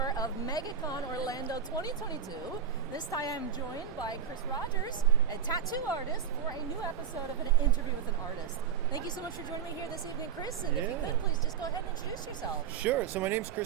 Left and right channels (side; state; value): left; quieter; 7.9 dB